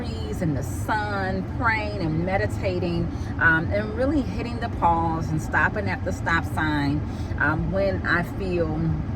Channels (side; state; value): both; identical; correlation 1.00